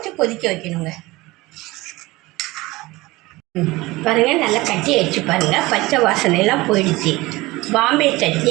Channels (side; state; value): left; quieter; 20.5 dB